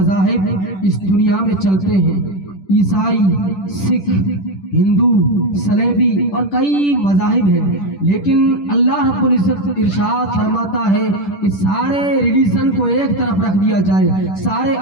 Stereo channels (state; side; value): late; right; 10 ms